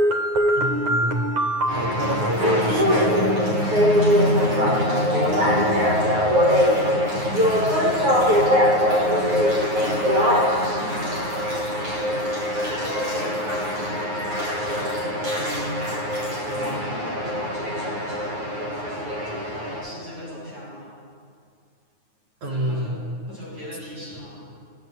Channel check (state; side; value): late; left; 9.4 ms